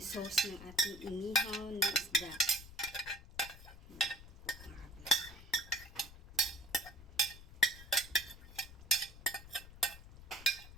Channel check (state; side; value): noise; left; rumble, 17 dB below the sound